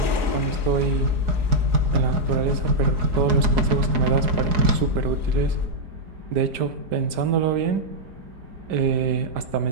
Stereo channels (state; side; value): late; left; 5.1 ms